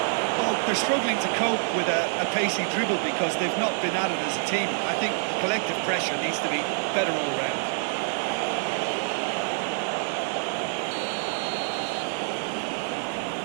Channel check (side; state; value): left; silent; digital silence